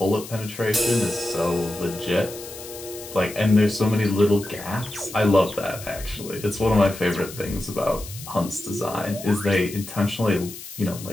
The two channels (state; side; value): noise; left; hiss, 13 dB below the sound